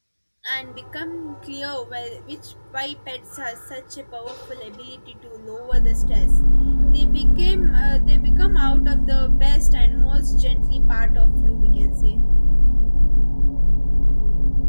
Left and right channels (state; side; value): inverted; both; correlation -1.00